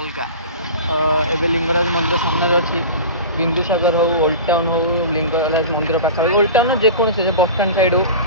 ଏବେ ଲିଙ୍ଗରାଜ ମନ୍ଦିର ସାମ୍ନାରେ ଅଛି। ବିନ୍ଦୁସାଗର ହଉ, ଓଲ୍ଡ ଟାଉନ୍ ହଉ, ଲିଙ୍ଗରାଜ ମନ୍ଦିର ପାଖାପାଖି, ଓଲ୍ଡ ଟାଉନ୍ ଯେକୌଣସି ବସଷ୍ଟାଣ୍ଡ ସାଇଡ଼୍ ହଉ,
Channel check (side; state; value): both; inverted; correlation -0.34